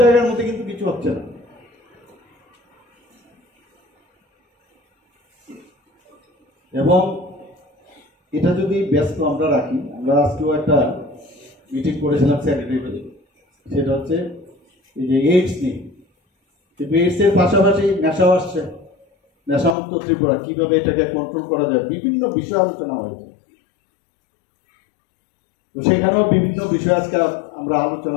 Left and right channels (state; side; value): drops out; right; at 19.8 s